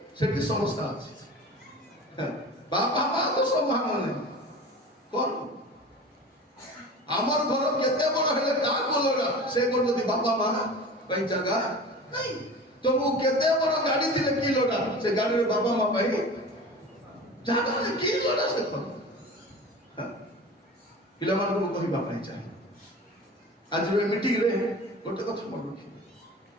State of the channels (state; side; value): normal; both; correlation 0.36